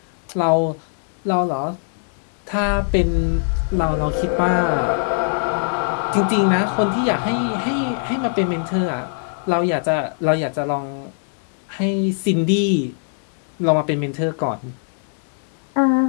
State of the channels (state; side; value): silent; right; digital silence